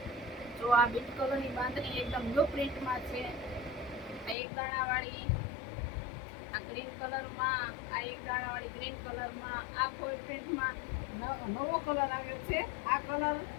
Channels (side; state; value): right; drops out; at 4.4 s